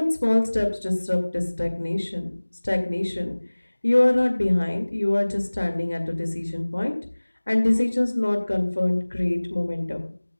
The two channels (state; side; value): inverted; both; correlation -1.00